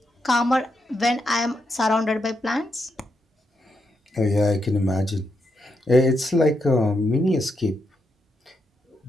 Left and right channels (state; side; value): normal; both; correlation 0.82